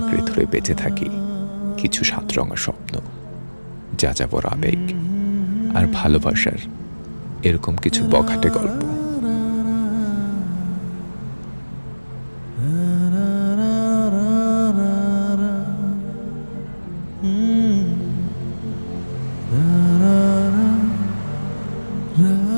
ধরে বেঁচে থাকি কিছু সাতরঙা স্বপ্ন, যাযাবর আবেগ আর ভালোবাসার এরকম কিছু বখাটে গল্প।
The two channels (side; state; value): both; inverted; correlation -1.00